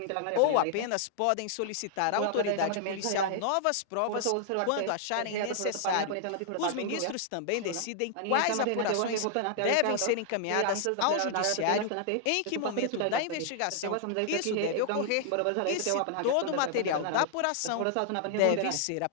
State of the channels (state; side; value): different; both; correlation -0.01